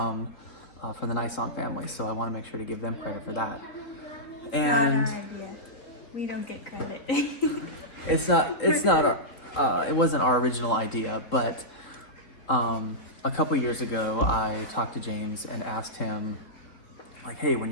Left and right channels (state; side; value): late; right; 3.8 ms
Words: the Nyson family. So I want to make sure to give them credit for that. And not our idea. We don't get credit. it wasn't our original idea, but a couple years ago I talked to James and asked him, like, hey, when